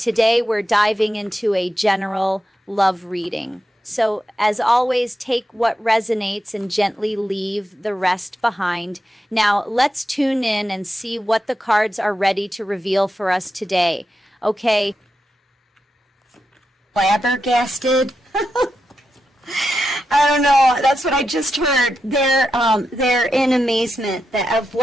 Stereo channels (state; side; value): normal; both; correlation 0.87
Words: we're diving into a general love reading. So, as always, take what resonates and gently leave the rest behind. Now, let's tune in and see what the cards are ready to reveal for us today. Okay. Flabbergasted. I don't know. That's what I just heard. They're in amazement that of